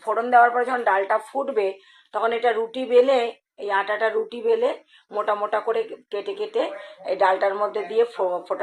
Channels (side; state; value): both; identical; correlation 1.00